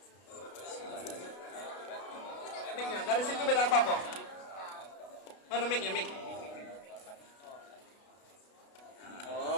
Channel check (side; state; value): right; late; 33 ms